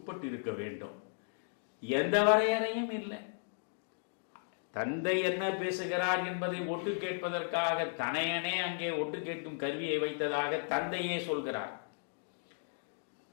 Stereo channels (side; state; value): right; silent; digital silence